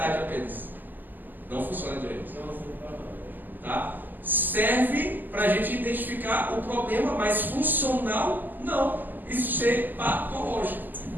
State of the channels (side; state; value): left; late; 0.087 ms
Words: apenas. Não funciona direito. Tá? Serve para a gente identificar o problema, mas funcional, não. Isso ser patológico.